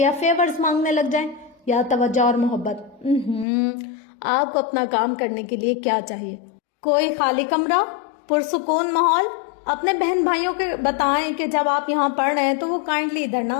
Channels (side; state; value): right; drops out; at 3.5 s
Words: فیورز مانگنے لگ جائیں یا توجہ اور محبت۔ آپ کو اپنا کام کرنے کے لیے کیا چاہیے؟ کوئی خالی کمرہ، پرسکون ماحول، اپنے بہن بھائیوں کو بتائیں کہ جب آپ یہاں پڑھ رہے ہیں تو وہ کائنڈلی ادھر نہ